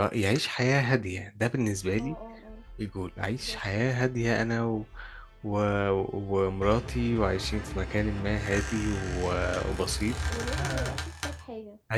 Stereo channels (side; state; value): both; identical; correlation 1.00